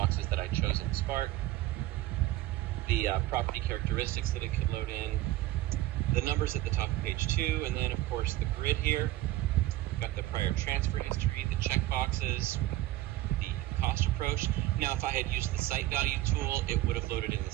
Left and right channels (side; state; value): left; quieter; 16.0 dB